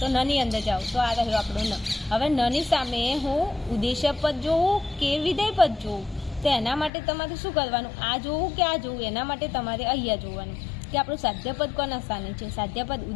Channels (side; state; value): right; drops out; at 6.9 s